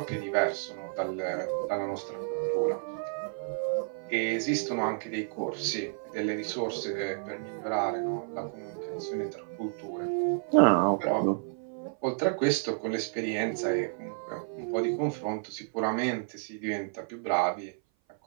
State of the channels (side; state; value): left; silent; 56 dB below the other